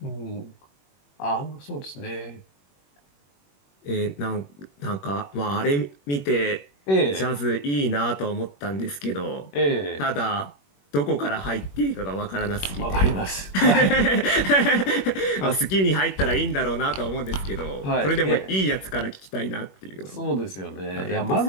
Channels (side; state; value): right; late; 21 ms